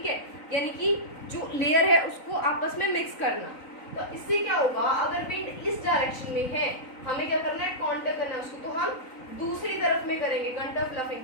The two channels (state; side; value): late; right; 3.9 ms